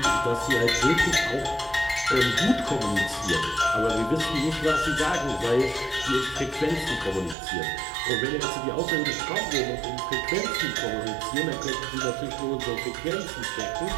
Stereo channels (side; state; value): left; drops out; at 7.4 s